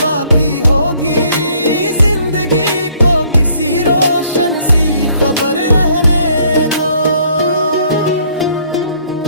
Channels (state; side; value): inverted; both; correlation -0.63